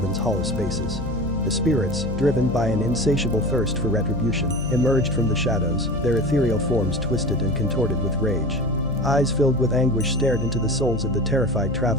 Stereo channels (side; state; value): left; noise; hum, 8 dB below the sound